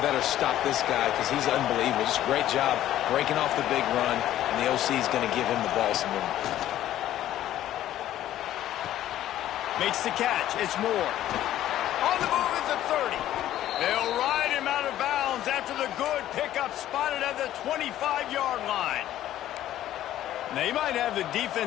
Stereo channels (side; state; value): right; quieter; 12.8 dB